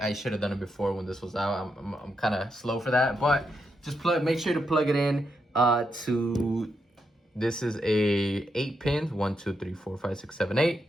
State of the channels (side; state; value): both; normal; correlation 0.82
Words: should have done it before when this was out. I'm kind of slow for that, but just make sure to plug it in to, this is a 8 pins, 1 2 3 4 5 6 7 8,